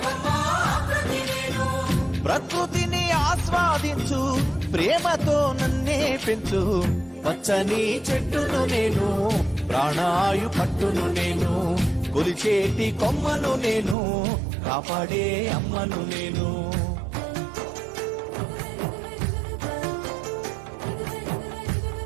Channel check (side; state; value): left; drops out; at 14.0 s